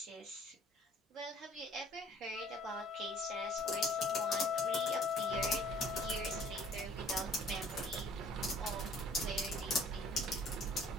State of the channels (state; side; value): normal; both; correlation 0.54